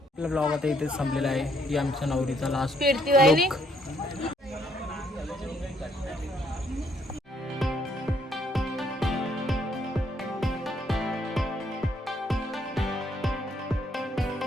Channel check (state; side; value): normal; both; correlation 0.69